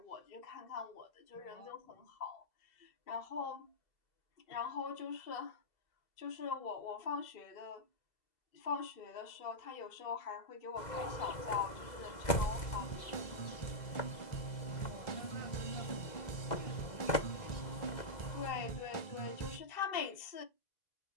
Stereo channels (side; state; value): right; late; 2.0 ms